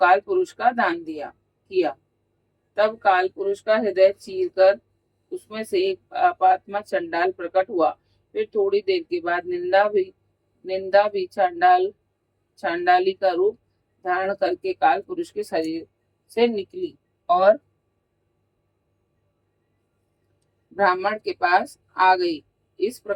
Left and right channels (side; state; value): both; identical; correlation 1.00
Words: पुरुष का दान किया। तब काल पुरुष का हृदय चीर कर उसमें से एक पापात्मा चंडाल प्रकट हुआ। फिर थोड़ी देर के बाद निंदा भी चांडाली का रूप धारण करके काल पुरुष के शरीर से निकली और ब्राह्मण के पास आ गई। इस